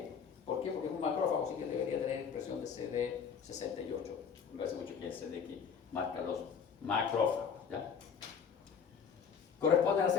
¿Por qué? Porque es un macrófago, así que debería tener expresión de CD68. Me parece mucho que es el CD que marca los macrófagos, ¿ya? Corresponden a las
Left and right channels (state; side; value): quieter; right; 6.7 dB